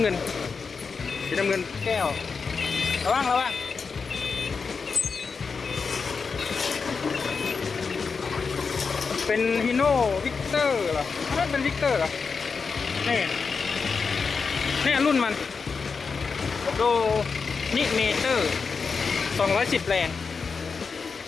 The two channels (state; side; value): quieter; right; 5.1 dB